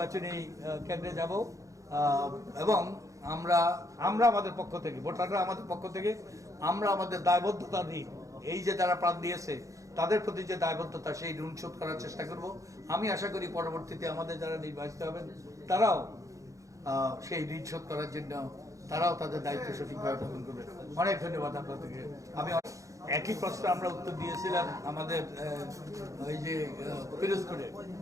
কেন্দ্রে যাব। এবং আমরা আমাদের পক্ষ থেকে, ভোটাররা আমাদের পক্ষ থেকে আমরা আমাদের দায়বদ্ধতা নিই, এই যে যারা প্রাণ দিয়েছে তাদের প্রতি যে দায়বদ্ধতা, সেই ঋণ শোধ করার চেষ্টা করব। আমি আশা করি পরবর্তীতে আমাদের যারা নির্বাচিত হবেন তারাও সেই ঋণ শোধ করার জন্য তারাও তাদের দায়িত্ব সঠিকভাবে পালন করবে। অনেক ধন্যবাদ আপনাদেরকে। আমি একই প্রশ্ন আমরা উত্তর দিয়েছিলাম আমাদের ওই যে পিরোজপুরে,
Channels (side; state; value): left; late; 0.16 ms